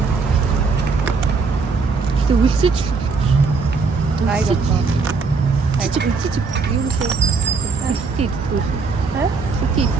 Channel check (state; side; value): quieter; left; 4.6 dB